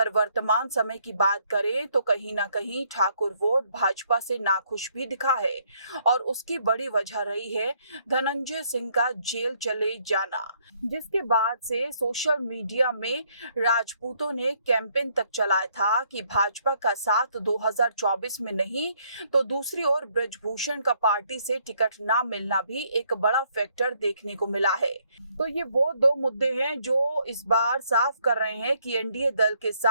वर्तमान समय की बात करें तो कहीं ना कहीं ठाकुर वोट भाजपा से नाखुश भी दिखा है। और उसकी बड़ी वजह रही है धनंजय सिंह का जेल चले जाना, जिसके बाद से सोशल मीडिया में राजपूतों ने कैंपेन तक चलाया था कि भाजपा का साथ 2024 में नहीं तो दूसरी ओर ब्रजभूषण का पार्टी से टिकट ना मिलना भी एक बड़ा फैक्टर देखने को मिला है। तो ये वो दो मुद्दे हैं जो इस बार साफ कर रहे हैं कि एनडीए दल के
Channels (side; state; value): both; inverted; correlation -0.68